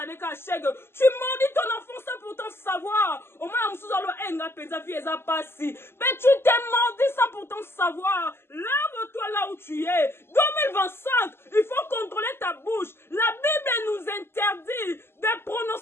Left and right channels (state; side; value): late; right; 0.12 ms